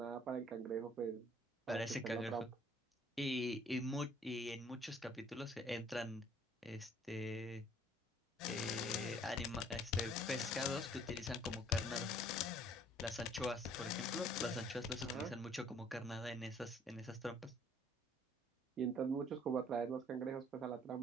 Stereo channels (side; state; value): both; normal; correlation 0.58